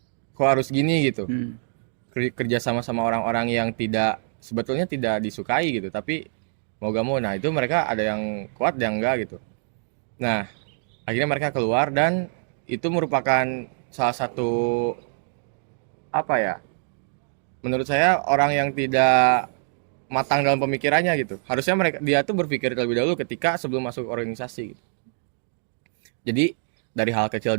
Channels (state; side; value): silent; left; digital silence